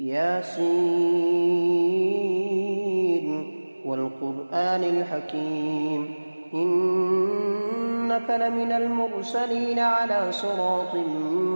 والقرآن الحكيم إنك لمن المرسلين على صراط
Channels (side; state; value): both; inverted; correlation -1.00